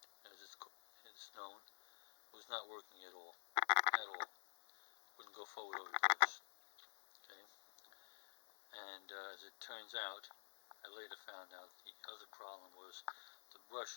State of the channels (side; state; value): right; silent; digital silence